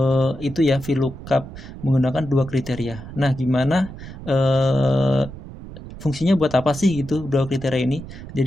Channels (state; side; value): noise; right; rumble, 13 dB below the sound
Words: itu ya VLOOKUP menggunakan dua kriteria. Nah, gimana fungsinya buat apa sih gitu dua kriteria ini?